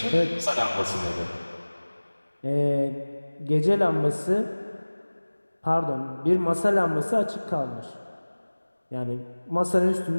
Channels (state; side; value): inverted; both; correlation -1.00